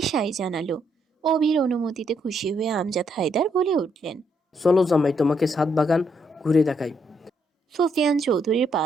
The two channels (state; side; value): normal; both; correlation 0.75